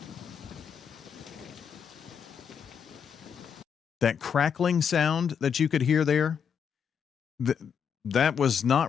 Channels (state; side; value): quieter; right; 7.3 dB